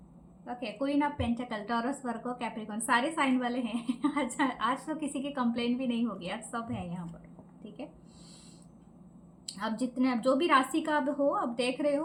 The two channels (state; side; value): identical; both; correlation 1.00